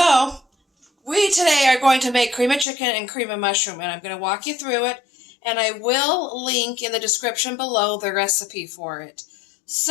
we today are going to make cream of chicken and cream of mushroom, and I'm going to walk you through it, and I will link in the description below the recipe for it.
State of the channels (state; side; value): drops out; right; at 2.7 s